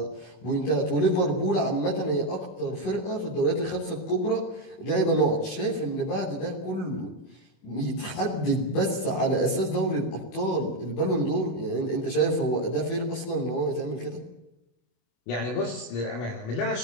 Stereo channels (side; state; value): right; late; 24 ms